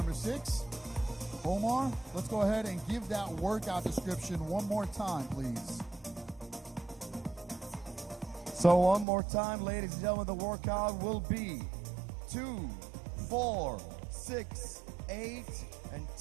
6. Omar, let's go ahead and give that workout description one more time, please. So one more time, ladies and gentlemen, the workout will be 2, 4, 6, 8, and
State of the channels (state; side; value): drops out; left; at 9.1 s